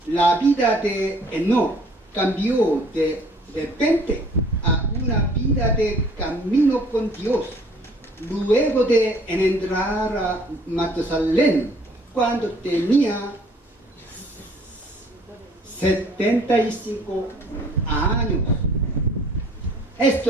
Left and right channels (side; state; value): both; normal; correlation 0.57